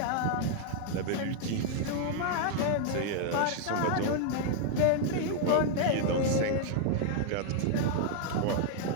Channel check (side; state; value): both; different; correlation 0.00